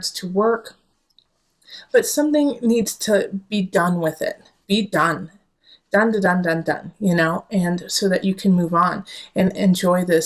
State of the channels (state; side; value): identical; both; correlation 1.00